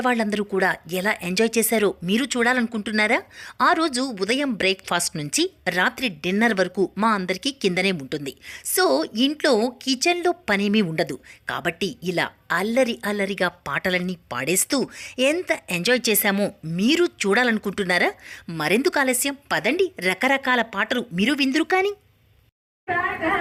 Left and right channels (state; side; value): identical; both; correlation 1.00